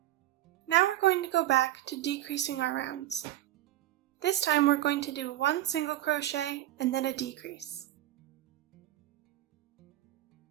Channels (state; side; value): quieter; left; 14.3 dB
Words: Now we're going to go back to decreasing our rounds. This time we're going to do 1 single crochet and then a decrease.